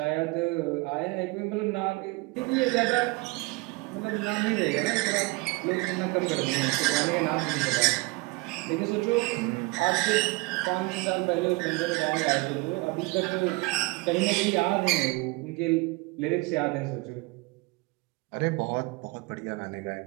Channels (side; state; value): left; quieter; 24.4 dB